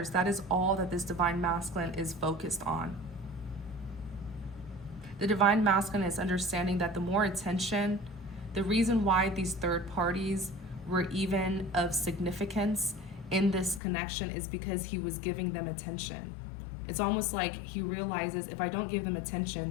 That is all that this divine masculine is focused on. The divine masculine is understanding that the more attention, the reason why these third parties were even of significance in this connection is because he was giving them attention. It's almost like he realizes if I don't give them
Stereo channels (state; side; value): drops out; right; at 13.8 s